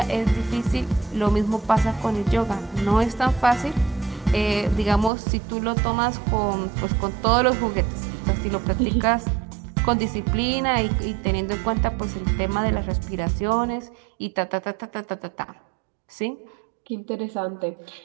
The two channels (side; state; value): left; drops out; at 5.1 s